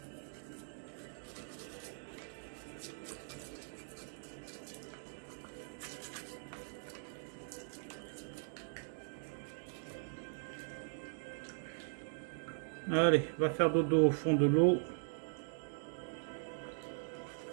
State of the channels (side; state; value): left; silent; digital silence